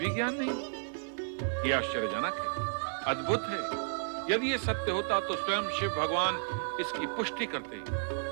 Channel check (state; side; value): silent; left; digital silence